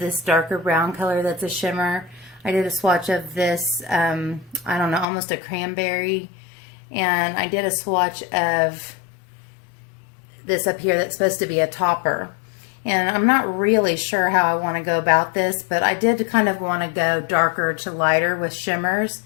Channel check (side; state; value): right; drops out; at 5.1 s